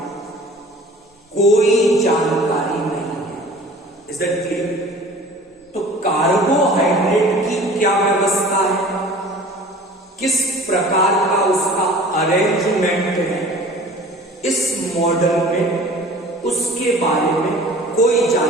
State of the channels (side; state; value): both; normal; correlation 0.45